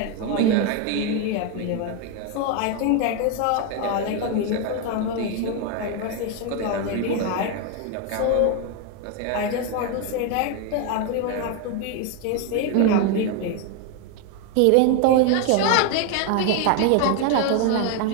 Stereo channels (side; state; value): both; different; correlation 0.01